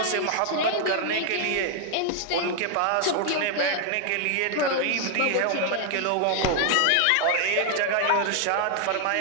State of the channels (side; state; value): both; different; correlation 0.00